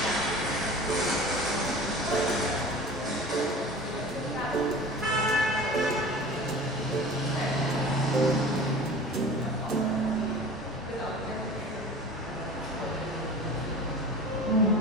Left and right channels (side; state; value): both; normal; correlation 0.38